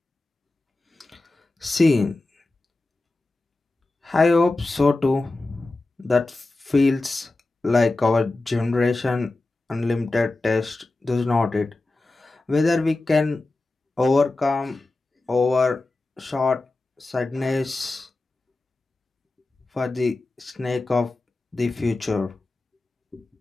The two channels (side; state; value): right; quieter; 3.1 dB